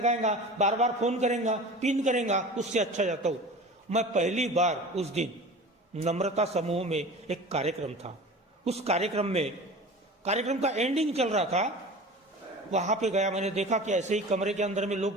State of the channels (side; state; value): both; normal; correlation 0.37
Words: बार बार फोन करेगा, पिन करेगा, उससे अच्छा जाता हूं। मैं पहली बार उस दिन नम्रता समूह में एक कार्यक्रम था, उस कार्यक्रम का एंडिंग चल रहा था, वहां पे गया। मैंने देखा कि ऐसे ही कमरे के अंदर में